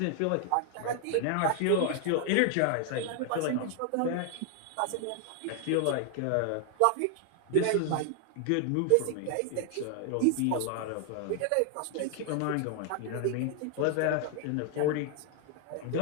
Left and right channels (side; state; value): both; different; correlation 0.00